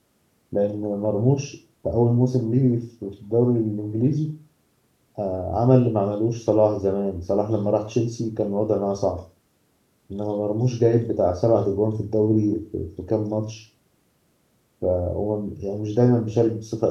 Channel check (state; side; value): identical; both; correlation 1.00